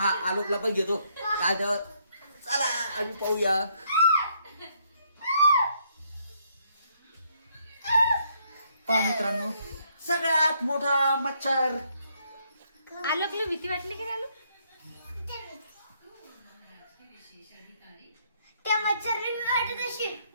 आलोकला पण घेतो काय तर. चला आम्ही पाहूया. पहा मित्रांनो सगळ्यात मोठा मच्छर. आलोकला भीती वाटली की आलोक त्या मच्छरने मी वाटत अशी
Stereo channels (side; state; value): both; inverted; correlation -0.71